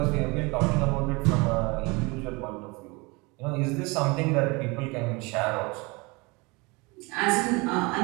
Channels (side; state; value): left; quieter; 26.5 dB